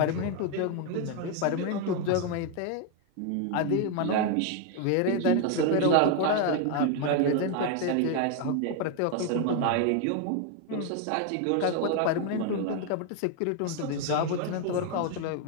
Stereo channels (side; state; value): both; different; correlation 0.01